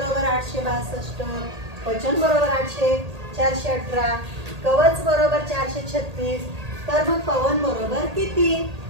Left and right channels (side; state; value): left; late; 1.8 ms